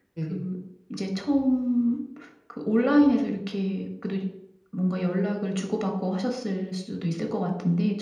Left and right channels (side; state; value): both; identical; correlation 1.00